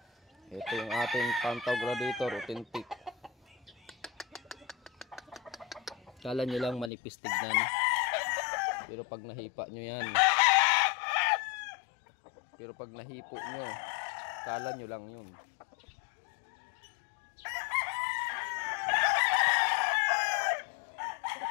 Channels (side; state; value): right; drops out; at 6.9 s